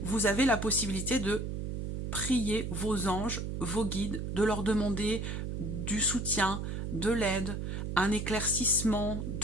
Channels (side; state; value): right; noise; hum, 4 dB below the sound